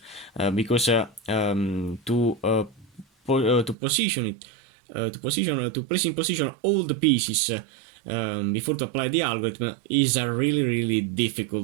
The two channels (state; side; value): drops out; left; at 3.8 s